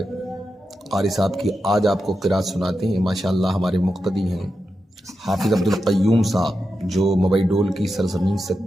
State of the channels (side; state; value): both; normal; correlation 0.88